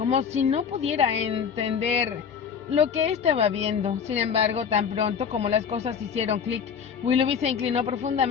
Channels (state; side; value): quieter; right; 7.0 dB